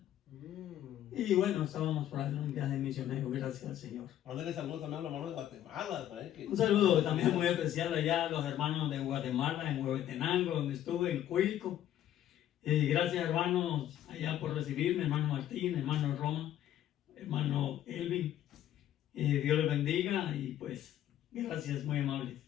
Y bueno, estábamos por ahí en un viaje misionero, gracias al Señor. Mándale saludos también a los hermanos de Guatemala, ¿sabes? Un saludo también muy especial allá a los hermanos de Guatemala, en Huehuetenango, donde estuve, en Cuilco. Y gracias, hermanos, allá por recibirme, hermano Martín, hermano Roma, hermano Elvin. Dios les bendiga y pues gracias, muy amables.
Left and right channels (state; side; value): quieter; right; 11.8 dB